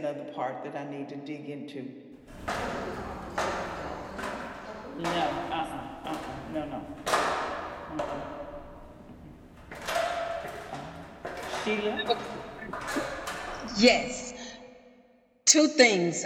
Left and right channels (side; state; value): both; identical; correlation 1.00